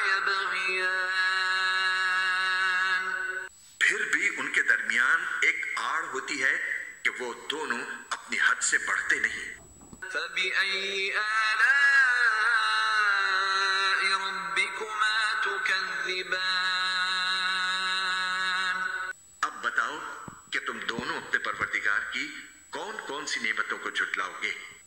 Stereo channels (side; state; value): both; identical; correlation 1.00